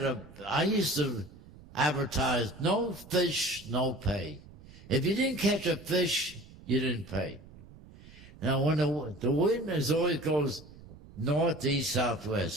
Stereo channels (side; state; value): right; noise; rumble, 20 dB below the sound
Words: used to advertise, no fish, no pay. If you didn't catch a fish, you didn't pay. Now, when the wind always goes north, east,